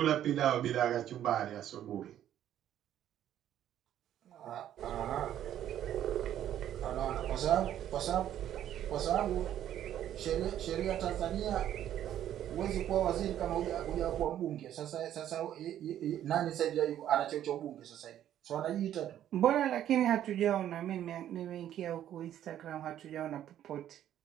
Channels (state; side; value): quieter; left; 11.2 dB